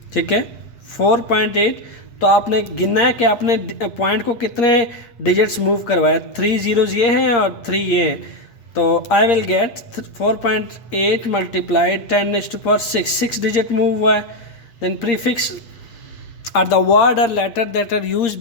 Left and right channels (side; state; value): right; late; 8.6 ms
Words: ठीक है, 4.8। तो आपने गिनना है कि आपने पॉइंट को कितने डिजिट्स मूव करवाए, 3 जीरोज़ ये हैं और 3 ये हैं। तो I will get 4.8 multiply 10⁻6, 6 digit move हुआ है। Then prefix are the word or letter that are use